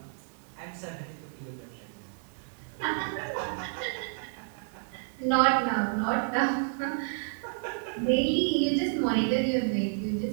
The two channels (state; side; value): silent; left; digital silence